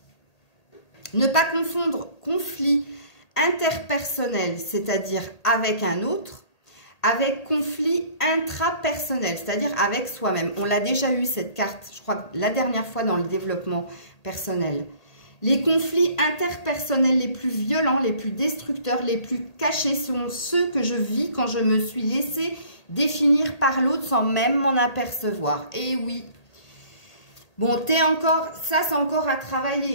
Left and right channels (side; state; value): right; late; 1.8 ms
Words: Ne pas confondre conflit interpersonnel, c'est-à-dire avec un autre, avec conflit intrapersonnel, c'est-à-dire avec soi-même. On l'a déjà eu cette carte, je crois, la dernière fois dans le développement personnel. Les conflits interpersonnels les plus violents, les plus destructeurs, les plus cachés sont ceux que je vis quand je me suis laissé définir par l'autre sans même m'en apercevoir. Et oui. Bon, ça c'est encore à